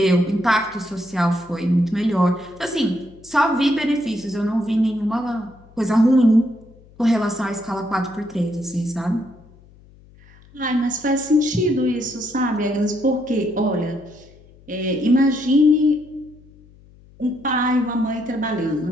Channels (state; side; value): noise; left; hum, 25 dB below the sound